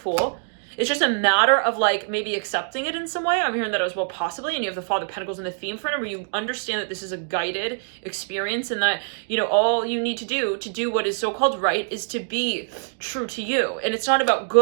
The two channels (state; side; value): silent; left; digital silence